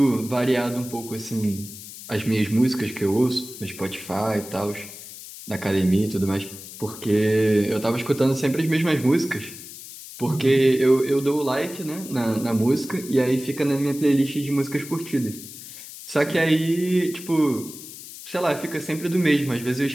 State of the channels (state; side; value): noise; left; hiss, 14 dB below the sound